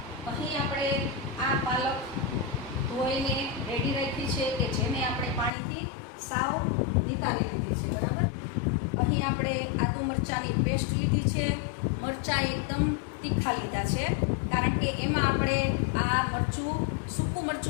અહીં આપણે આ પાલક ધોઈને રેડી રાખી છે કે જેને આપણે પાણીથી સાવ નિતારી લીધી છે. બરાબર. અહીં આપણે આદુ મરચાંની પેસ્ટ લીધી છે. મરચાં એકદમ તીખા લીધા છે કારણ કે એમાં આપણે આ મરચું સૂકું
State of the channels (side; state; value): right; drops out; at 5.5 s